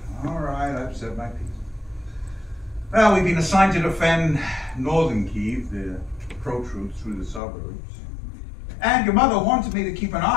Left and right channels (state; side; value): drops out; right; at 7.4 s